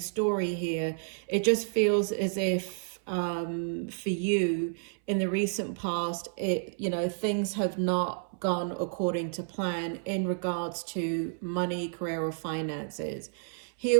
here, it just feels as if for you in the recent past, things have not gone according to plan in regards to money, career or finances.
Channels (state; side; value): silent; left; 58 dB below the other